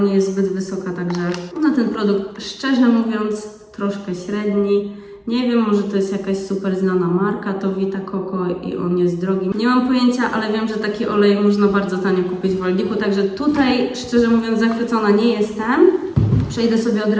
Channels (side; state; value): both; identical; correlation 1.00